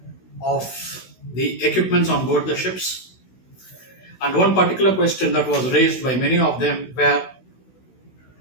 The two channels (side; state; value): right; late; 16 ms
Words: of the equipments on board the ships. And one particular question that was raised by many of them were,